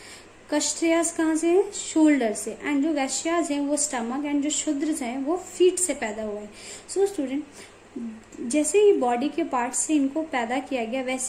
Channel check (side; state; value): both; identical; correlation 1.00